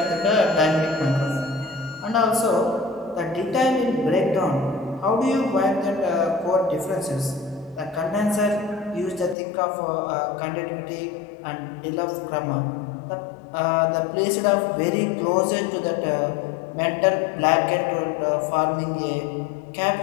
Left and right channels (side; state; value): right; drops out; at 9.3 s